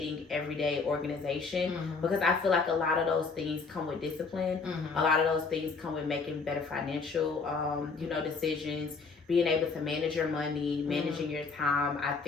everyday organization because I feel like a lot of those things come with discipline. A lot of those things come with making better financial, decisions, being able to manage your money, managing your time, I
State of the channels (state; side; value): quieter; right; 4.6 dB